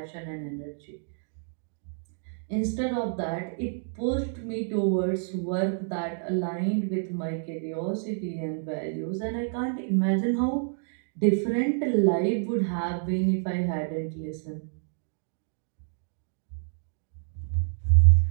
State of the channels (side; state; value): left; silent; digital silence